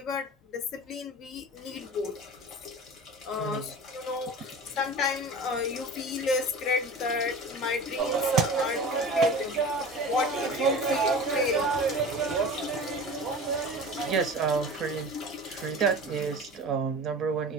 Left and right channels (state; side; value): normal; both; correlation 0.35